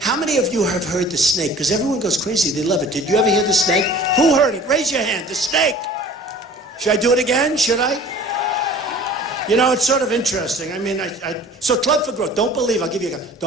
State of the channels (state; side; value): normal; both; correlation 0.46